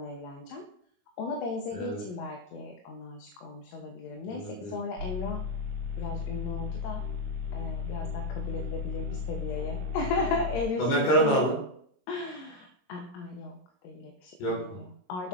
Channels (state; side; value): late; right; 22 ms